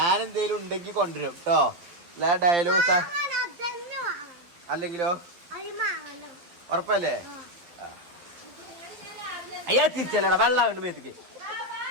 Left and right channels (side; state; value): left; late; 12 ms